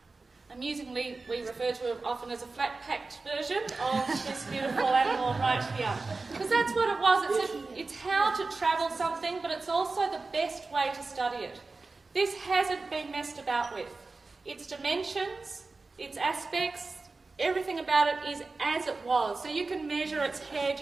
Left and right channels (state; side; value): quieter; left; 3.7 dB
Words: amusingly, we refer to it often as a flat-packed version of this beautiful animal right here. Because that's what it was. It's how to travel something, but it's also the best way to study it. This hasn't been messed about with. Its dimensions, its aspects, everything about it is as it was. So you can measure its head,